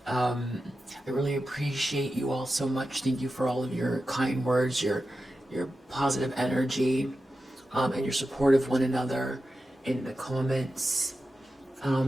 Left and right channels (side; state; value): both; normal; correlation 0.91